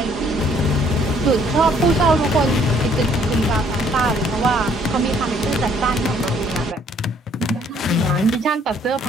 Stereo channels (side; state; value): both; normal; correlation 0.63